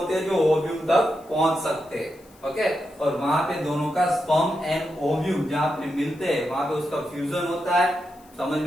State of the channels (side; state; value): left; noise; hiss, 28 dB below the sound